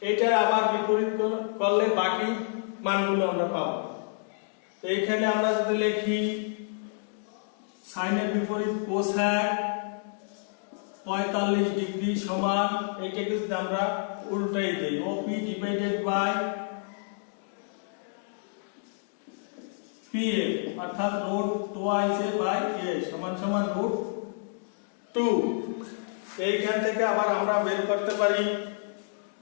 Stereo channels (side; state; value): right; silent; digital silence